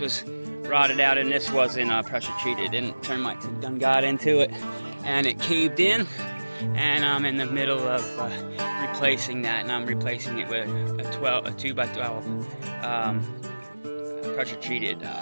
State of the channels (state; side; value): inverted; both; correlation -1.00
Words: was rotted out and this wasn't pressure treated. And termites had done got into it and it caved in. And I'm in the middle of replacing that, and I'm replacing it with a 2x12 pressure treated